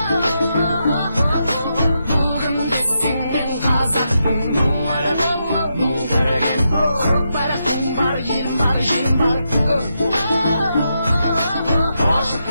Бүгін десең мен қазақпын, мұңары мұң түреген, көкбарақтың бар, елім бар, жерім бар. Ашық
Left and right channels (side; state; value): both; inverted; correlation -0.84